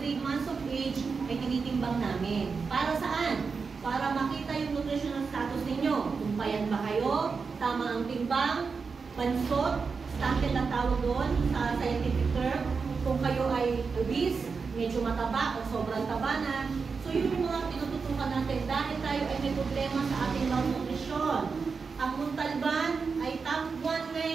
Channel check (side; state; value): left; quieter; 5.1 dB